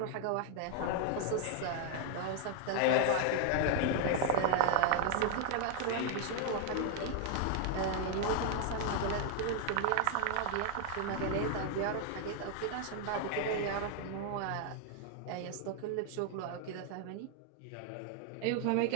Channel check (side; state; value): both; different; correlation 0.00